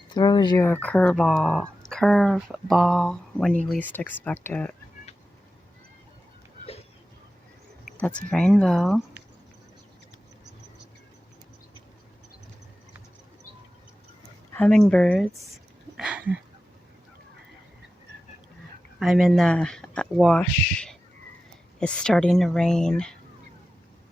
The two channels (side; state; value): both; normal; correlation 0.93